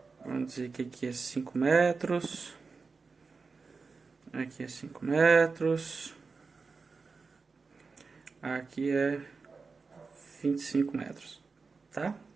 Vamos dizer que aqui é 5 metros. Aqui é 5 metros. Aqui é 25 metros, tá?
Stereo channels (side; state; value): left; quieter; 4.5 dB